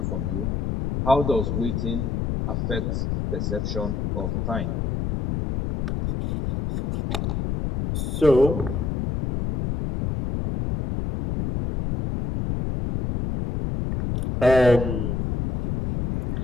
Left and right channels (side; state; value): left; noise; rumble, 1 dB below the sound